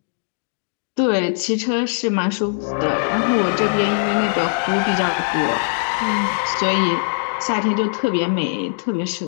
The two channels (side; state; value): right; silent; digital silence